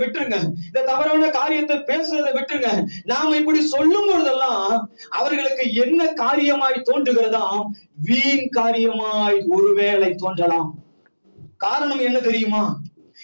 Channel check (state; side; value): inverted; both; correlation -1.00